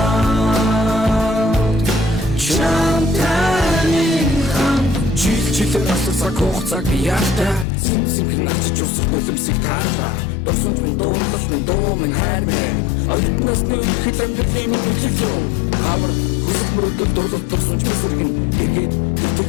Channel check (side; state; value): right; drops out; at 7.7 s